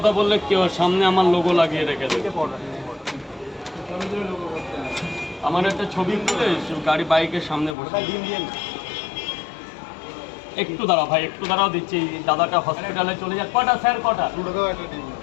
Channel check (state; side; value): drops out; right; at 7.8 s